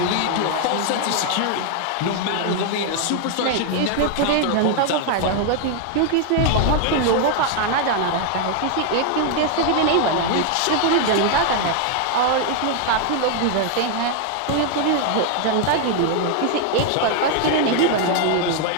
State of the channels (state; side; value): different; both; correlation 0.00